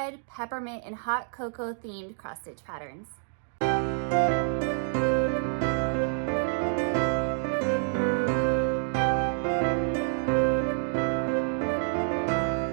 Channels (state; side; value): silent; left; digital silence